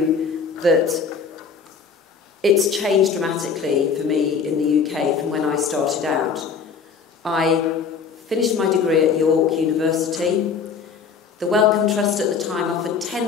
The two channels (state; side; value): quieter; right; 5.9 dB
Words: that it's changed dramatically for me in the UK from when I started out. I finished my degree at York University. The Wellcome Trust at the time offered